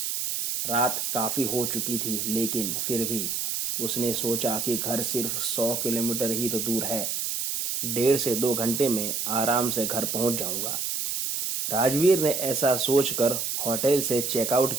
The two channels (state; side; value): noise; right; hiss, 1 dB below the sound